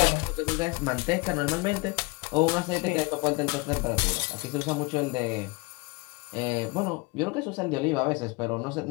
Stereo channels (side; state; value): right; quieter; 25.9 dB